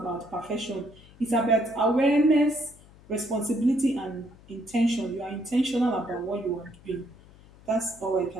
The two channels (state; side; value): noise; left; hum, 24 dB below the sound